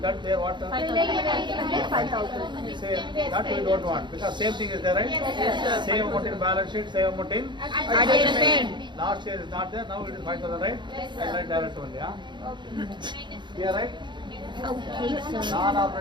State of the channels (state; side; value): late; left; 0.22 ms